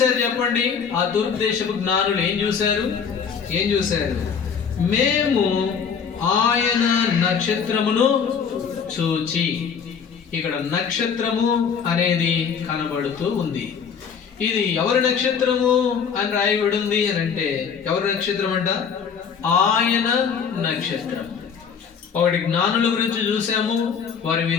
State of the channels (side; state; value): right; quieter; 6.7 dB